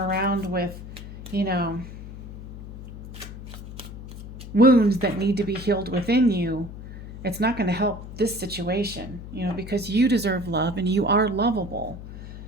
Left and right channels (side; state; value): left; noise; hum, 12 dB below the sound